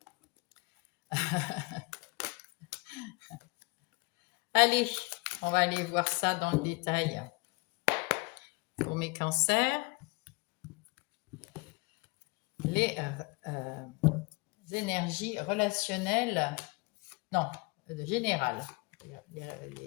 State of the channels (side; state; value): right; quieter; 27.3 dB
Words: Allez, on va aller voir ça dans le détail. Pour mes cancers, les énergies relationnelles, non, générales,